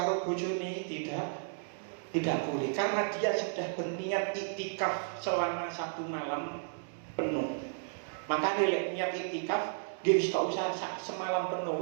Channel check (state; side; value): silent; left; digital silence